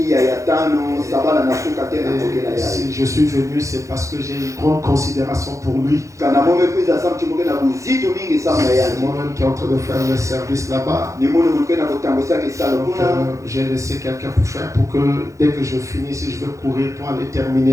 Si je suis venu, c'est parce que j'ai une grande considération pour lui. C'est moi-même qui est en train de faire le service là-bas. J'ai laissé quelqu'un pour faire pour que dès que je finis, si je veux courir pour aller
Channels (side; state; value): left; late; 0.15 ms